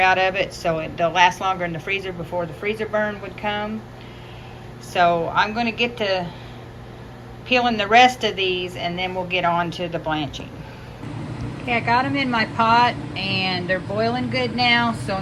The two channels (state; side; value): identical; both; correlation 1.00